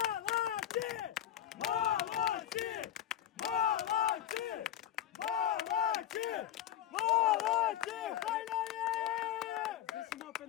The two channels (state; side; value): quieter; right; 11.4 dB